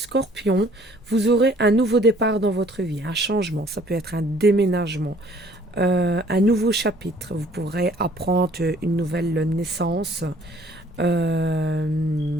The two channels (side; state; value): both; normal; correlation 0.57